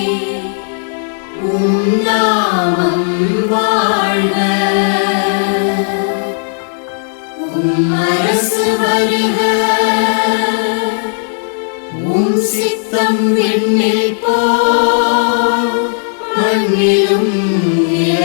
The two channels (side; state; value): right; silent; 71 dB below the other